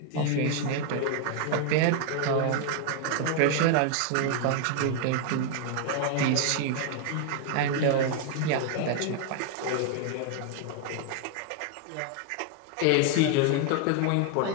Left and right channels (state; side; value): different; both; correlation 0.00